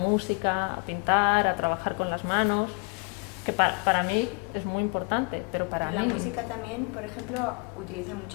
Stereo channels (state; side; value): quieter; right; 32.4 dB